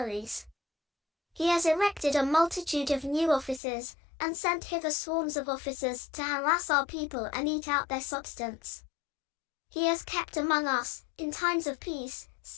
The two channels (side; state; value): right; drops out; at 3.6 s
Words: He has erected a multitude of new offices, and sent hither swarms of officers to harass our people and eat out their substance. He has kept among us, in times of peace,